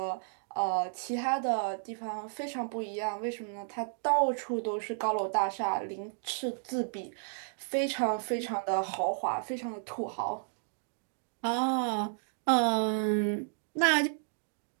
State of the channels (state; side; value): silent; left; digital silence